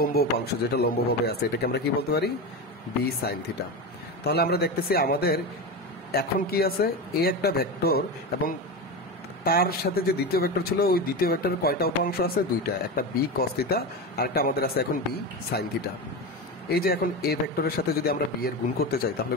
উপাংশ যেটা লম্বভাবে আছে এটাকে আমরা কি বলতে পারি, বি সাইন থিটা। তাহলে আমরা দেখতেছি আমাদের এখন কি আছে, এ একটা ভেক্টর এবং তার সাথে যে দ্বিতীয় ভেক্টর ছিল ওই দ্বিতীয় ভেক্টরের কয়টা উপাংশ আছে, দুইটা, একটা বি কস থিটা আর একটা আমাদের আছে এখন বি সাইন থিটা। এই যে এখন এ ভেক্টরের সাথে যদি আমরা বি এর গুণ করতে চাই তাহলে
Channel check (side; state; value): both; normal; correlation 0.21